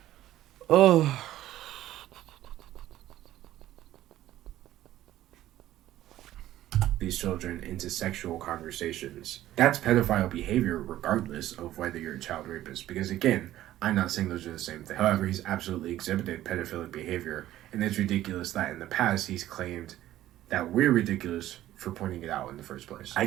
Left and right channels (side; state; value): left; quieter; 13.8 dB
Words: Oh... these children into sexual conversations. That's pedophile behavior regardless of whether you're a child rapist. Because again, I'm not saying those are the same thing. However, he's absolutely exhibited pedophilic behavior. And it's ridiculous that in the past he's claimed that we're ridiculous for pointing it out in the first place.